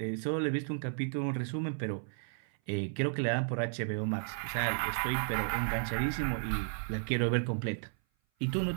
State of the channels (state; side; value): silent; left; 55 dB below the other